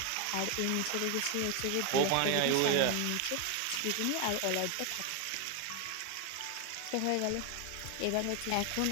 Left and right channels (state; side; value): different; both; correlation 0.01